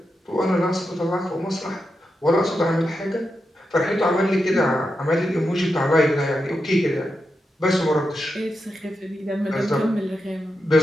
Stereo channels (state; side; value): normal; both; correlation 0.87